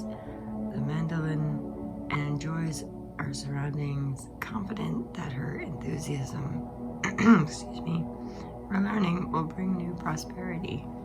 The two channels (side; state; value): both; identical; correlation 1.00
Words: the mandolin and enjoys her surroundings, confident that her enthusiasm for learning will bring new prosperity.